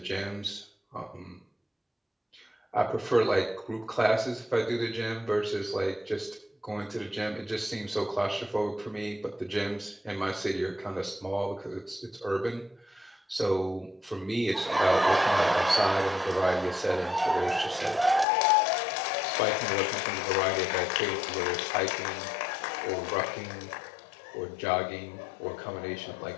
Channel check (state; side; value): drops out; right; at 18.2 s